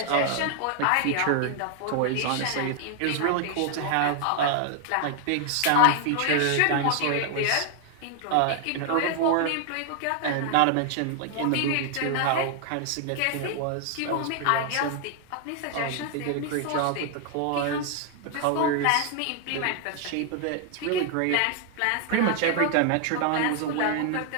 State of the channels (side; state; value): both; different; correlation 0.00